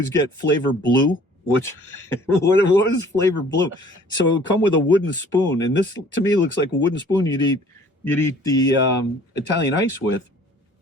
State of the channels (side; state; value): both; normal; correlation 0.53